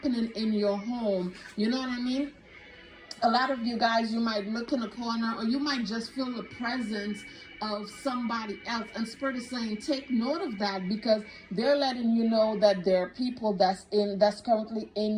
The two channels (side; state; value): both; identical; correlation 1.00